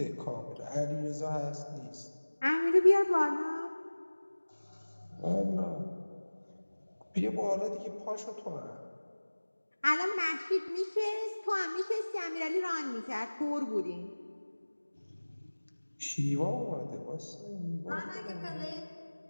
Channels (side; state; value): both; inverted; correlation -1.00